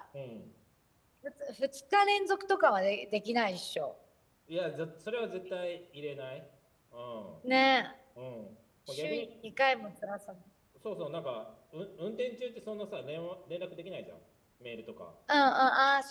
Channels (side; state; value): both; identical; correlation 1.00